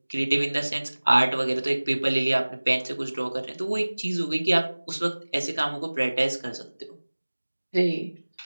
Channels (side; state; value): both; inverted; correlation -1.00